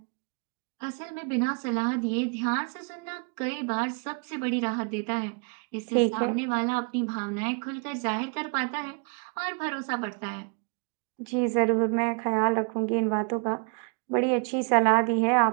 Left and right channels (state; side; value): quieter; left; 37.4 dB